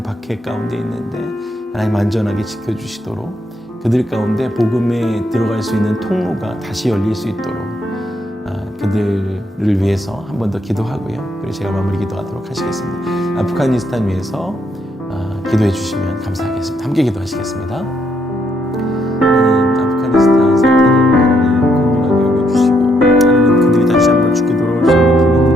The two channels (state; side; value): normal; both; correlation 0.74